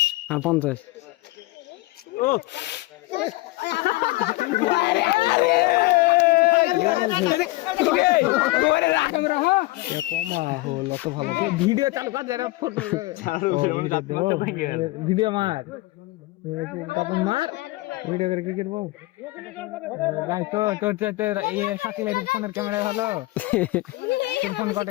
আর 50 ও ভিডিও চালু কর যারা ফটো ভিডিও মার তখন মার ভিডিও করে কি করবো ভাই তো তোর এই শাকিলের ফোনের ক্যামেরা ভালো তোর ফোন কত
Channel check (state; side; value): quieter; right; 20.8 dB